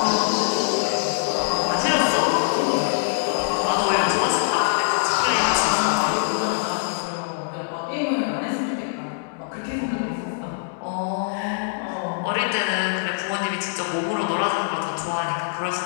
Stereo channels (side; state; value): right; silent; digital silence